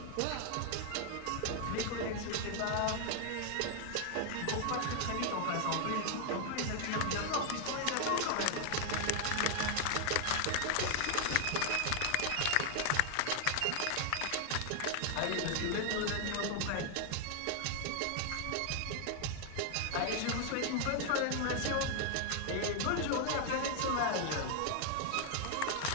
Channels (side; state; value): both; different; correlation 0.00